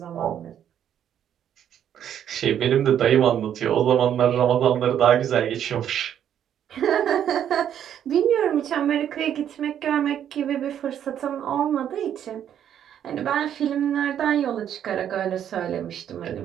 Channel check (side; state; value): left; quieter; 9.8 dB